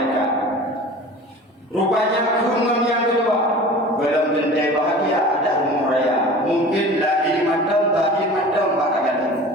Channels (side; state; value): both; normal; correlation 0.39